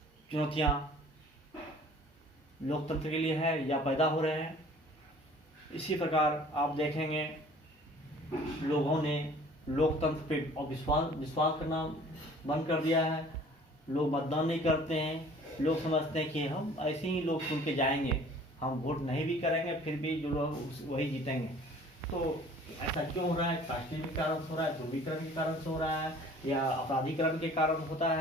चुनौतियां लोकतंत्र के लिए है या पैदा हो रहे हैं। इसी प्रकार आप देखेंगे लोगों ने लोकतंत्र पे विश्वास करना बंद कर दिया है। लोग मतदान नहीं करते हैं। लोग समझते हैं कि हम ऐसे ही लोग चुन के जाएंगे, हम वोट नहीं भी करेंगे फिर भी जो लोग वही जीतेंगे। तो ऐसा क्यों हो रहा है? कास्टिंग के कारण हो रहा है, ध्रुवीकरण के कारण से हो रहा है, या अपराधीकरण के कारण होता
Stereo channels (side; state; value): both; normal; correlation 0.51